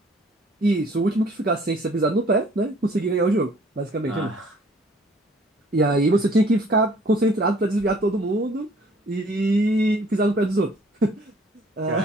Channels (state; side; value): normal; both; correlation 0.57